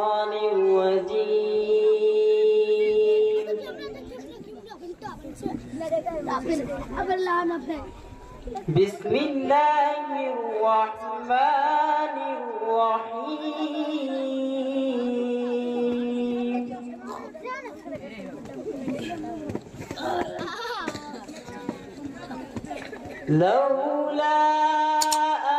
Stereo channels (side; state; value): both; identical; correlation 1.00